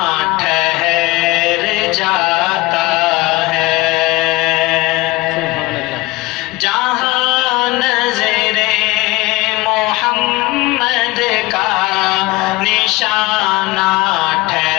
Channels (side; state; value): right; quieter; 21.6 dB